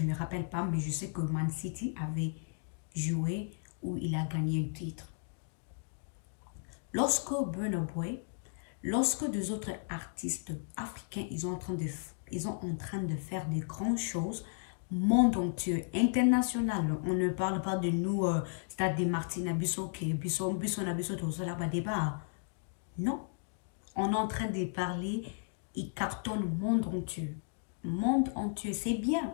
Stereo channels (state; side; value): silent; right; digital silence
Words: ne me rappelle pas, mais je sais que Man City avait joué ou il a gagné un titre. Lorsque Burna Boy, lorsque des autres artistes africains, ils sont en train de faire des grandes choses, monde entier, international, on ne parle pas de nous, Stade des Martyrs, Bisso, débat. Non, on est en train de parler, il cartonne monde entier. Monde entier, c'est